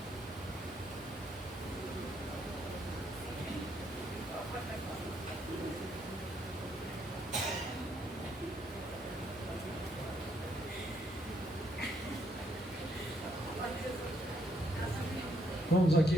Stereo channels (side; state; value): both; normal; correlation 0.73